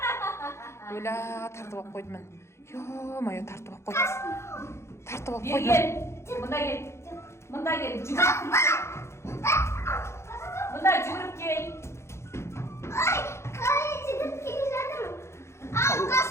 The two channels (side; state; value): right; late; 0.13 ms